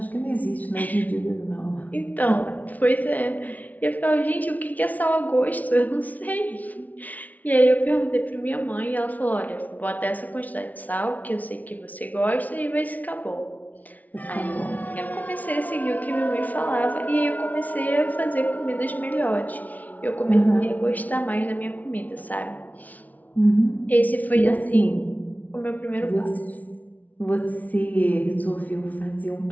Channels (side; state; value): right; late; 0.074 ms